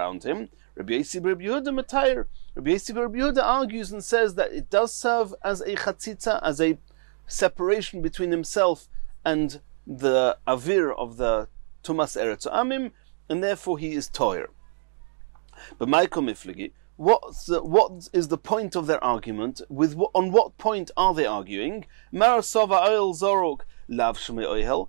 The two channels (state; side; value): silent; left; digital silence